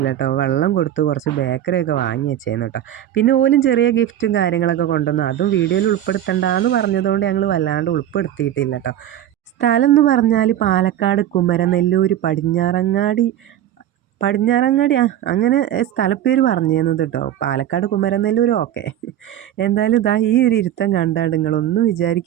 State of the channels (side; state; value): left; quieter; 11.6 dB